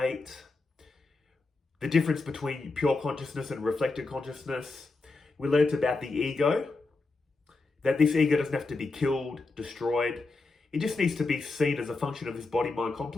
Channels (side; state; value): right; quieter; 3.6 dB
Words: the difference between pure consciousness and reflected consciousness. We learned about the ego, that this ego doesn't have to be killed, destroyed. It just needs to be seen as a function of this body-mind